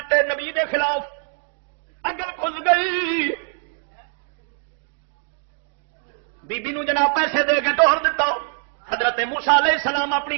نبی دے خلاف. اگل کھل گئی بی بی نو جناب پیسے دے کے توڑ دیتا. حضرت موسیٰ علیہ السلام اپنی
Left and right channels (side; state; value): left; silent; 58 dB below the other